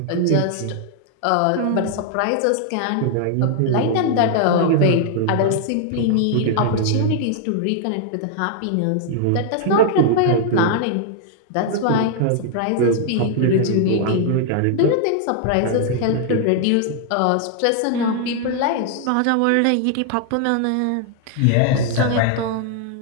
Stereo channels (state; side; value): different; both; correlation 0.00